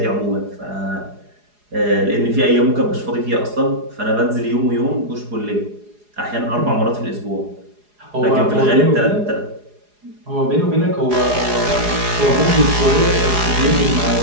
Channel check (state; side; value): late; left; 4.8 ms